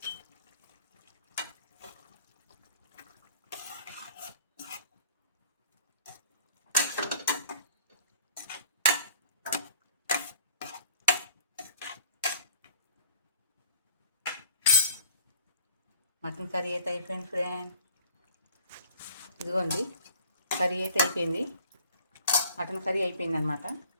మటన్ కర్రీ అయితే అయిపోయింది ఫ్రెండ్. ఇదిగోండి కర్రీ అయితే అయిపోయింది. మటన్ కర్రీ అయిపోయింది అనమాట.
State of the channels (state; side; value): inverted; both; correlation -0.50